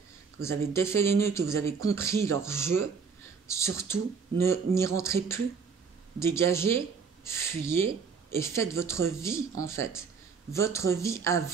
que vous avez défait les nœuds, que vous avez compris leur jeu, surtout, n'y rentrez plus. Dégagez, fuyez et faites votre vie, en fait. Votre vie à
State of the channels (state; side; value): quieter; left; 5.7 dB